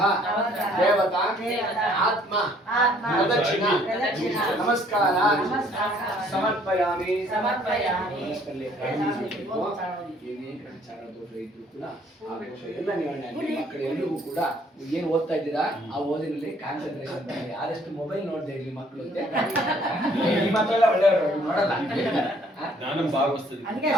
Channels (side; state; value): both; normal; correlation 0.61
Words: देवता आत्मा प्रदक्षिण नमस्कार समर्पयामि ಎಲ್ಲ ಮಕ್ಕಳು ಎಲ್ರಿಗೂ ಕೂಡ ಏನು ಓದ್ತಾ ಇದ್ದೀರಾ ಆ ಓದಿನಲ್ಲಿ ಕಾನ್ಸಂಟ್ರೇಷನ್ ಮಾಡಿ. ಯಾರೆಷ್ಟು ಮೊಬೈಲ್ ನೋಡ್ತಾ ಇರ್ಲಿ ಮಕ್ಕಳು ಈ ಮಕ್ಕಳೆಲ್ಲ ಒಳ್ಳೆಯವರು ನೋಡಲ್ಲ.